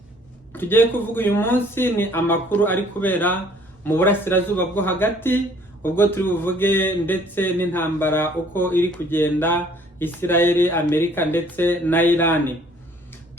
tugiye kuvuga uyu munsi ni amakuru ari kubera mu burasirazuba bwo hagati, ubwo turi buvuge ndetse n'intambara uko iri kugenda Israel, Amerika ndetse na Iran.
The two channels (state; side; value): normal; both; correlation 0.58